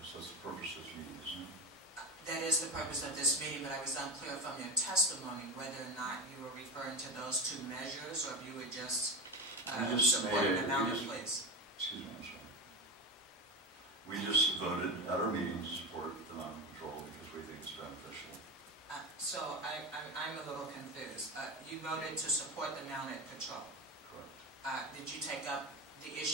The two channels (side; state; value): both; normal; correlation 0.21